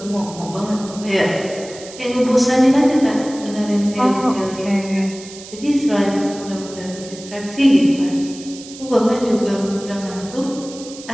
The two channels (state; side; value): noise; right; hiss, 16 dB below the sound